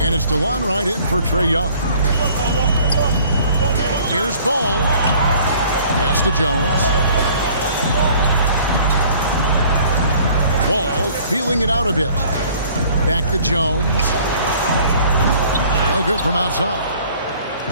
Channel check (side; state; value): both; inverted; correlation -0.54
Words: it's DeLon Wright in for Trae Young. Here's Ball. Pass to Jones. Ball feeling it out a bit. Back to Jones. No good from outside.